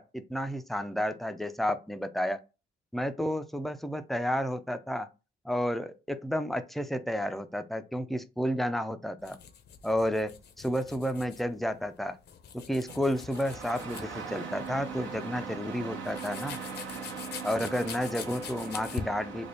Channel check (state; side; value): normal; both; correlation 0.86